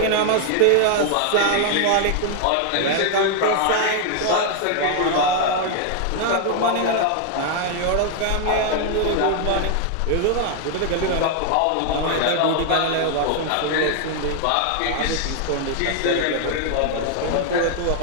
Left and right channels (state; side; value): different; both; correlation 0.00